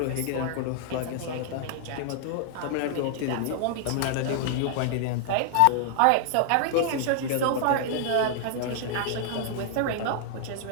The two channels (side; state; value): both; different; correlation -0.01